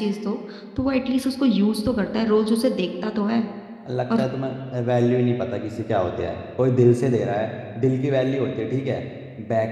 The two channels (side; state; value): both; identical; correlation 1.00